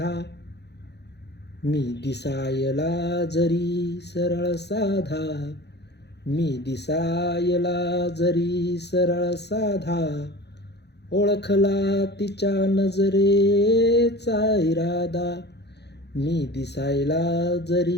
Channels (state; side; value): late; right; 0.49 ms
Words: मी दिसायला जरी सरळ साधा, मी दिसायला जरी सरळ साधा. ओळखला तिच्या नजरेचा इरादा, मी दिसायला